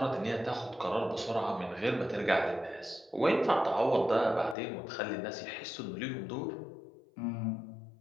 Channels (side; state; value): right; drops out; at 4.5 s